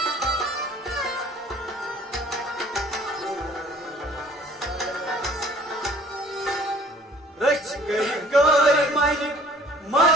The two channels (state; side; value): normal; both; correlation 0.54